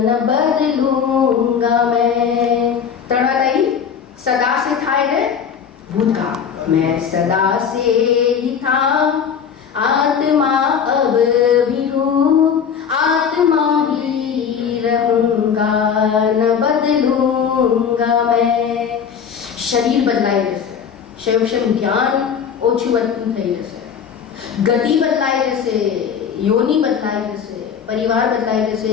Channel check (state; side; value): quieter; right; 7.3 dB